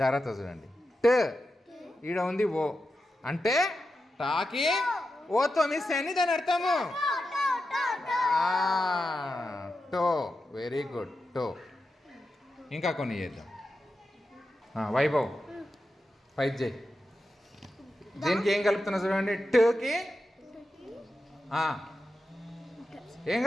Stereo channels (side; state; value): both; normal; correlation 0.90